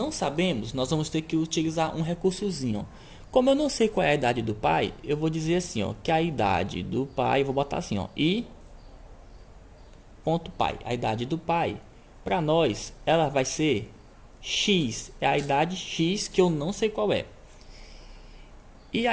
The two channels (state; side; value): identical; both; correlation 1.00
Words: sabemos, nós vamos ter que utilizar um recursozinho. Como eu não sei qual é a idade do pai, eu vou dizer assim, ó, que a idade do pai, vou botar assim, ó, i ponto pai. A idade do pai, para nós, ela vai ser x, é a idade x que eu não sei qual é. E